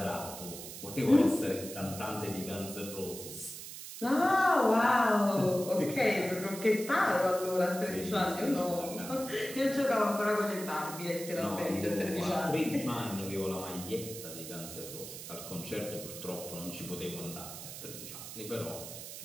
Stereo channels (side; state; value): right; noise; hiss, 10 dB below the sound